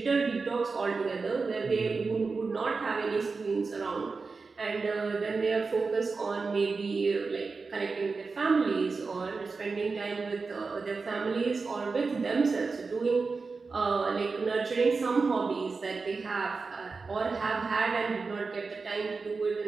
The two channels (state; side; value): quieter; left; 4.4 dB